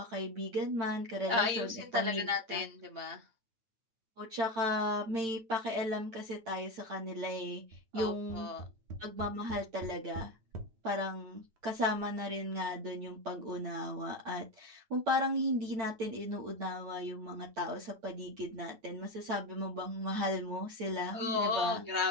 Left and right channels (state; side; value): late; left; 9.1 ms